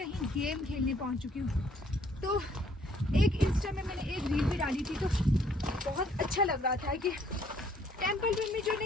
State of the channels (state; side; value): normal; both; correlation 0.63